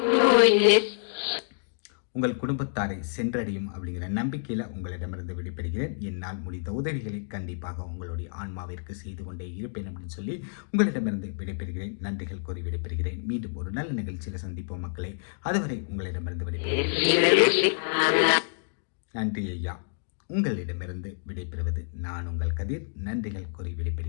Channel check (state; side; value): silent; right; digital silence